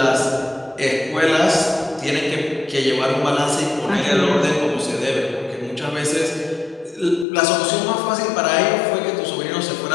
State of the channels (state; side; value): drops out; right; at 7.2 s